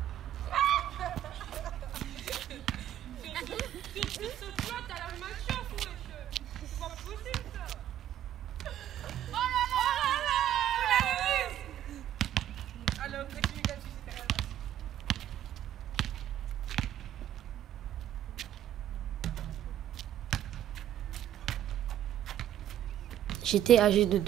J'étais âgée de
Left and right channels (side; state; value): left; quieter; 11.5 dB